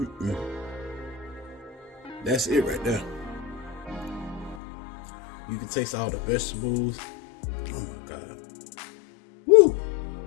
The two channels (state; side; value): drops out; right; at 4.6 s